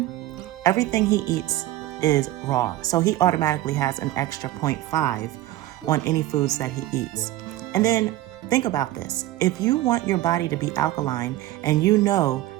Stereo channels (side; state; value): left; quieter; 15.3 dB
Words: everything he eats is raw. So he automatically has an extra 0.5 on any foods that he eats. And then think about this. If you want your body to be alkaline and you know